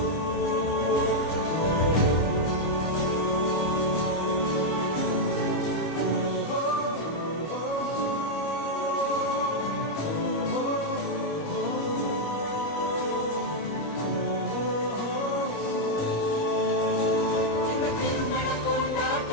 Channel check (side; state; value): right; late; 25 ms